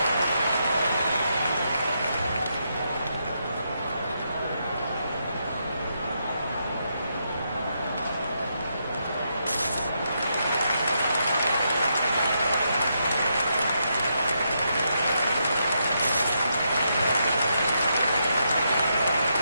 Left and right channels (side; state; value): both; inverted; correlation -0.80